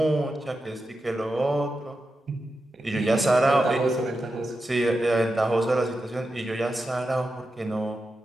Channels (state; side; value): normal; both; correlation 0.90